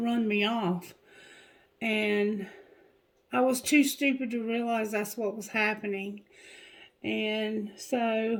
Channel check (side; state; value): both; identical; correlation 1.00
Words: me off, and I was too stupid to realize that's what was happening. And